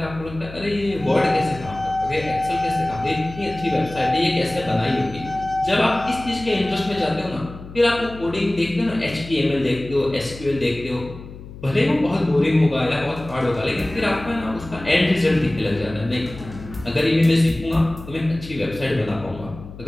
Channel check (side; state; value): left; noise; hum, 15 dB below the sound